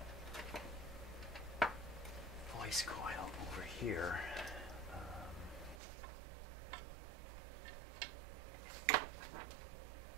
voice coil over here.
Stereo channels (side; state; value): left; drops out; at 5.8 s